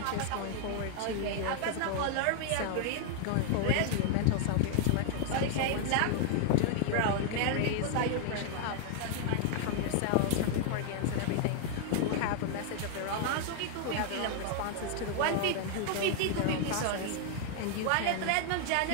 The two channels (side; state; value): both; different; correlation 0.00